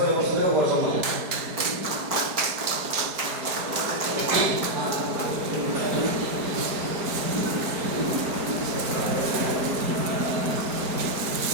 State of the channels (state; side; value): late; left; 4.8 ms